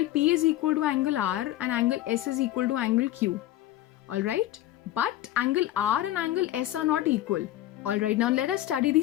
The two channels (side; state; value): right; quieter; 14.2 dB